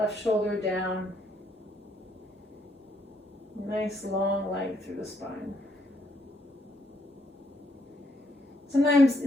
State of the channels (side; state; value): both; normal; correlation 0.72